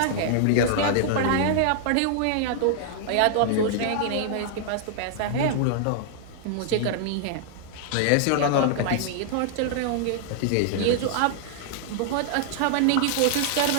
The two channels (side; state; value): both; different; correlation -0.01